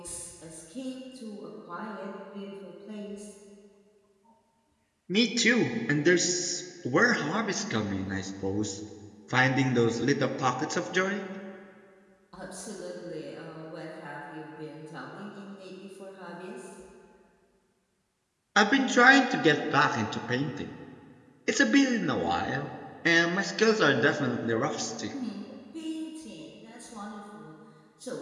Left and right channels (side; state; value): both; identical; correlation 1.00